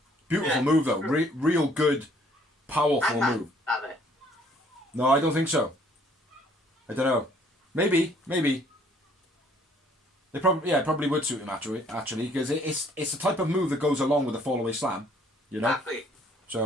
Beautiful move though. Real good, powerful move. No, I don't think so. I don't know. Maybe. They probably would suit him actually, because it's the type of move that goes along with a fallaway slam, you know. Exactly.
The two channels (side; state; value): both; normal; correlation 0.61